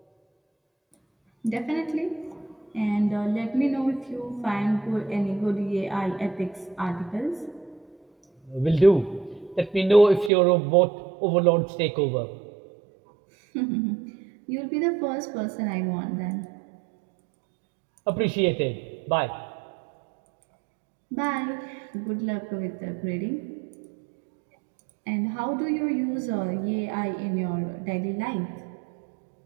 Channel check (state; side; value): drops out; left; at 10.3 s